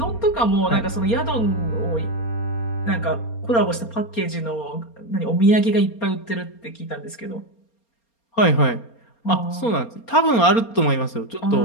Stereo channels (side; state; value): right; late; 4.3 ms